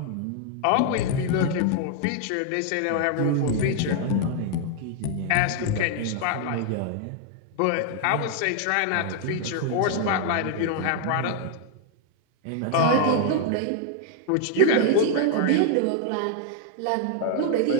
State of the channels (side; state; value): both; different; correlation 0.00